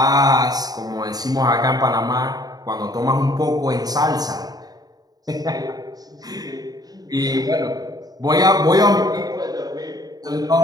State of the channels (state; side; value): late; left; 0.19 ms